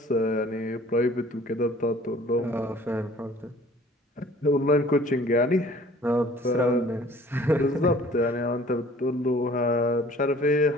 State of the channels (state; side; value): normal; both; correlation 0.52